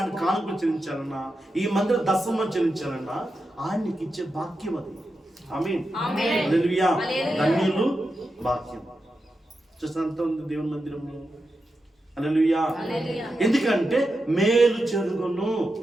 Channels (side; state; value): both; normal; correlation 0.89